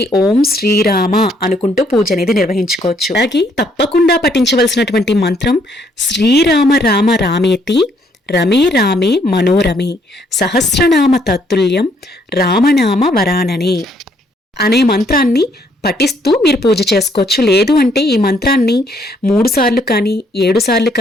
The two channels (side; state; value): both; normal; correlation 0.68